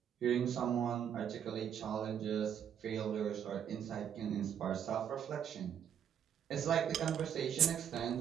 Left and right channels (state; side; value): quieter; left; 8.9 dB